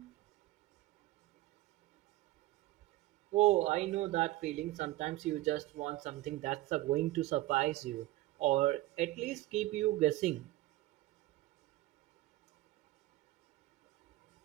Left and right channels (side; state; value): left; quieter; 17.3 dB